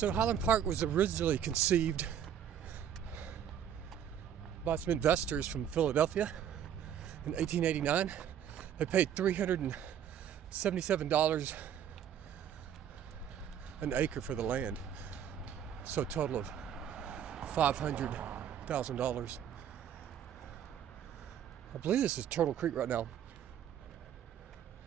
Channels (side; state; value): left; quieter; 9.4 dB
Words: Highland Park was originally conceived by some investors from Philadelphia in 1889. They paid $377 an acre for the land, so a total of $500,000. I believe this is Turtle Creek right now.